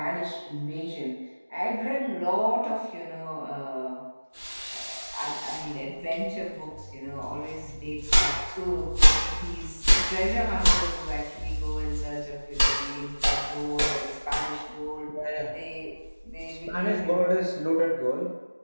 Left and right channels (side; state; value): both; inverted; correlation -1.00